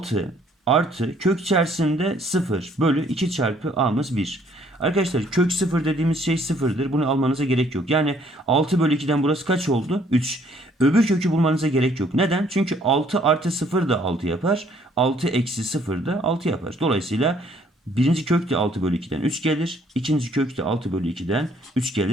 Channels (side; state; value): both; normal; correlation 0.63